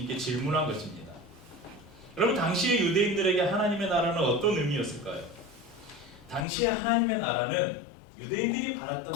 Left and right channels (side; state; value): right; drops out; at 6.5 s